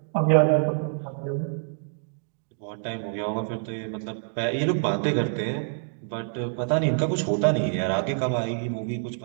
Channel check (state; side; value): silent; left; digital silence